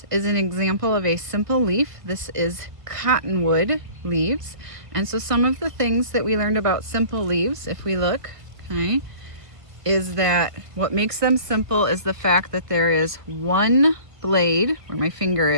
is an example of a simple leaf. This is cottonwood leaves. And so some of the things that we learned about simple leaves, if we look, okay, is that what makes them simple is the fact that there is one blade, where my finger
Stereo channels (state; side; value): late; left; 1.5 ms